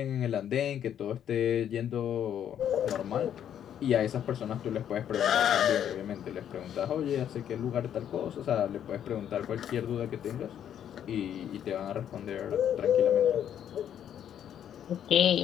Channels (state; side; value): quieter; right; 9.7 dB